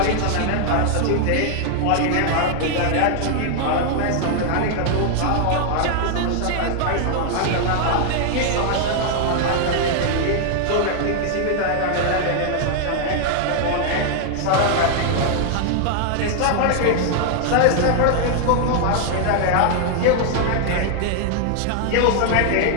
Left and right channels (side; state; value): both; different; correlation 0.00